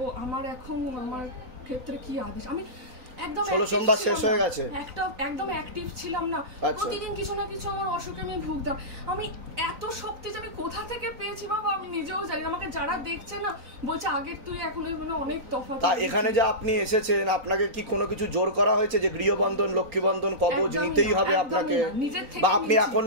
আমার এখন আমার ক্ষেত্রে কি আদেশ? আমি একদম 16 সোমবার শেষ হয়ে গেছে, একদম অ্যাক্টিভ ছিলাম না, প্রতিদিন কিছু না কিছু আমার অসুখে আমি ভুগতাম। আমি এত শক্তি যে আমি কোথা থেকে পেয়েছি বাবা আমি নিজেও জানি। আমাকে যারা দেখছে না বলছে আগের তুই এখন অনেক তফাৎ। এখানে যে আপনি এসেছেন, আপনাকে কি কোনো কিছু জোর করা হয়েছে যে গৃহবন্ধন, লক্ষ্মীবন্ধন, কবজ নিতেই হবে আপনাকে, বা আপনি এখন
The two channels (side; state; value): left; late; 3.9 ms